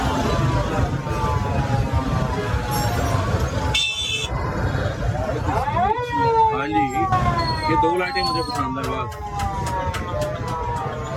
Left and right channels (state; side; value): identical; both; correlation 1.00